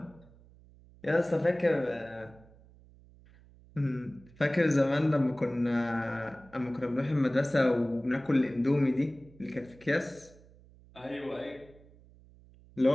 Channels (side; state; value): right; noise; hum, 25 dB below the sound